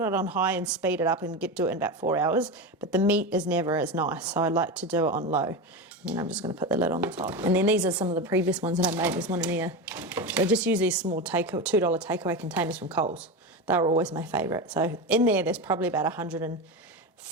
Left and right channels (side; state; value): both; normal; correlation 0.20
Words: on high and speed it up and do it in about 4 hours, but the meat is never as nice, so I like to do it on low. And then I'm just going to put the lid on the top. And then these are some of the previous ones that I made. There's one in here. So I just use these small $2 takeaway containers from Coles. They were always my favourite. So in there's probably about